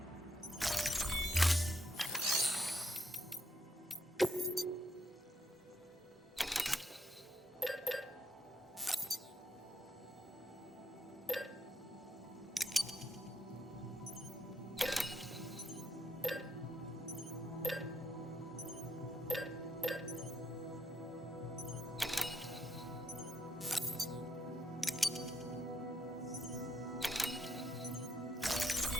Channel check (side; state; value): both; normal; correlation 0.78